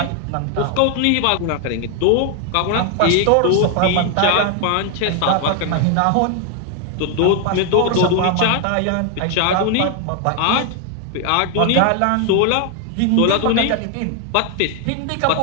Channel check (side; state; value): both; different; correlation 0.00